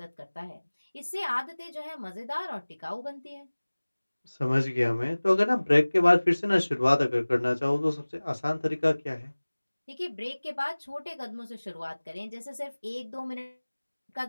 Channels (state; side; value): inverted; both; correlation -1.00